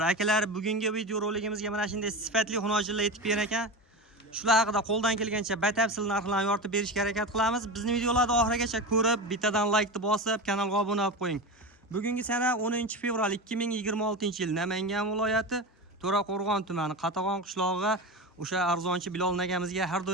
Akalar, bugungi video roligimizga mana shunday sifatli xunojinlar yetib kelgan ekan. Shular haqida qo'ldan kelgancha batafsil narxlarni yoritib berishga harakat qilamiz. Bizni videolarni oxirigacha ko'rib, bittadan like bosib, kanalga obuna bo'lib qo'ying. Bugungi sana 10-fevral 2026-yil Namangan viloyati To'raqo'rg'on tumani Qatag'on qishlog'iga o'sha arzonchi Bilol akamizga har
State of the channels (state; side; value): normal; both; correlation 0.24